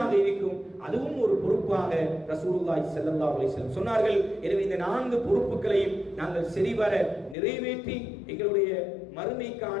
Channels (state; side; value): drops out; right; at 7.4 s